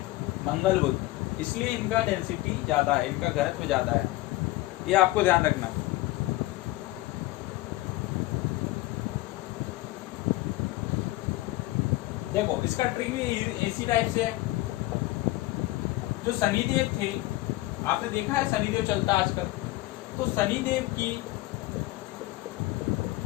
मंगल बुध, इसलिए इनका डेंसिटी ज्यादा है, इनका घनत्व ज्यादा है, ये आपको ध्यान रखना। देखो इसका ट्रिक भी इसी टाइप से है। जो शनिदेव थे, आपने देखा है शनिदेव चलता आजकल, तो शनिदेव की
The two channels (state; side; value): quieter; right; 18.8 dB